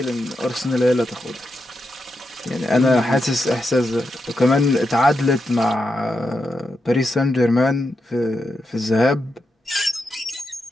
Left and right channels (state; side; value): normal; both; correlation 0.86